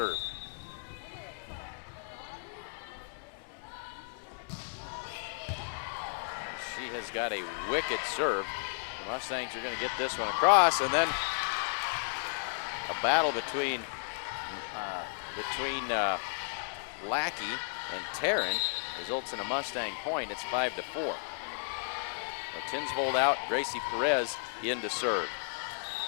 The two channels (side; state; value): right; silent; digital silence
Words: She has got a wicked serve. The Mustangs are going to get this one across, and then a battle between Lackey and Taryn results in a Mustang point. It's 5-4. So Tinsvold out, Gracie Perez in to serve.